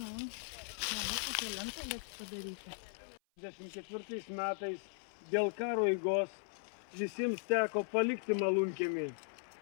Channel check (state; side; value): silent; right; 52 dB below the other